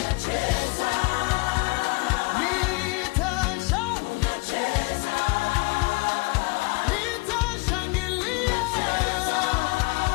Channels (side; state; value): right; quieter; 28.0 dB